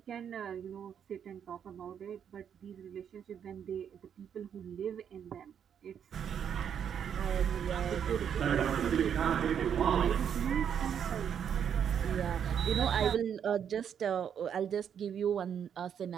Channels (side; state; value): left; quieter; 8.3 dB